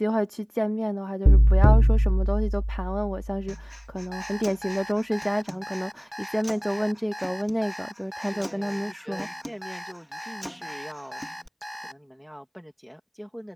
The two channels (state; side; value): identical; both; correlation 1.00